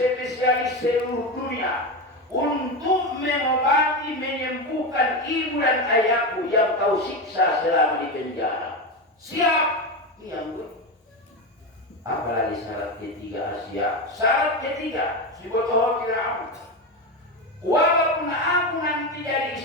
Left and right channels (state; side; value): normal; both; correlation 0.16